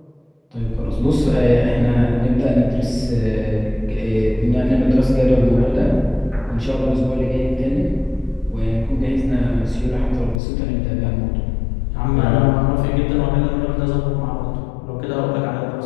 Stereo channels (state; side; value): drops out; right; at 10.4 s